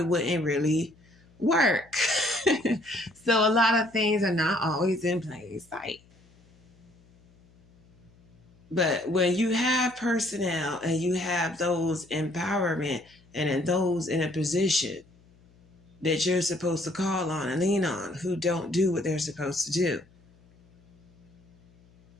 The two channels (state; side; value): noise; left; hum, 29 dB below the sound